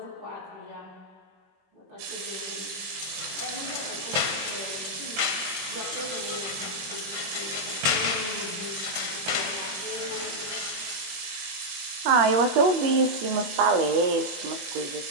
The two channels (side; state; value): left; late; 22 ms